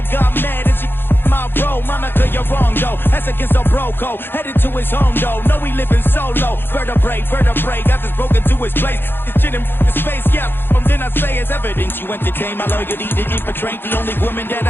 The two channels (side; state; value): right; late; 0.10 ms